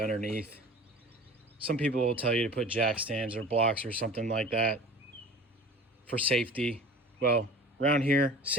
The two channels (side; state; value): both; normal; correlation 0.40